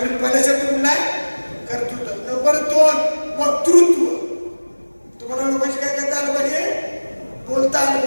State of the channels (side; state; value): both; inverted; correlation -1.00